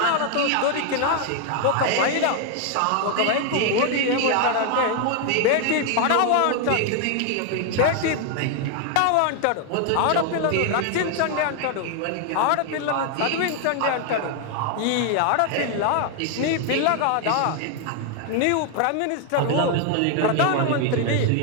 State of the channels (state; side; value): different; both; correlation 0.00